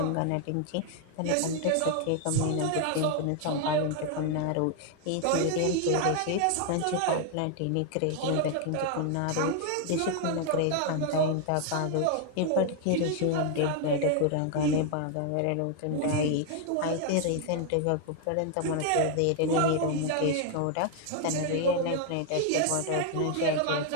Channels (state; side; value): different; both; correlation 0.00